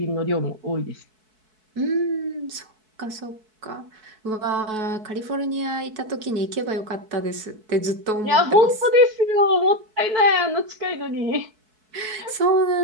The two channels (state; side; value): late; left; 4.6 ms